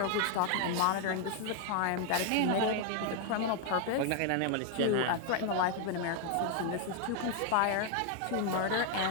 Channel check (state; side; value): different; both; correlation 0.00